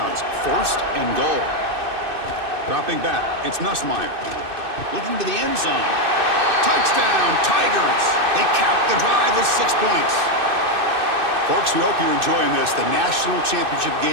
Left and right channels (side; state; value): left; late; 2.6 ms